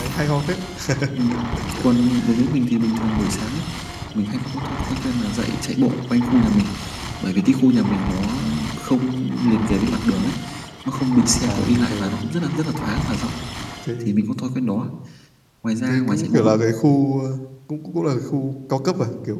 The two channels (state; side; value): identical; both; correlation 1.00